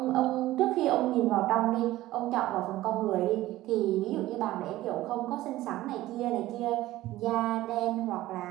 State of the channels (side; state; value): left; quieter; 16.1 dB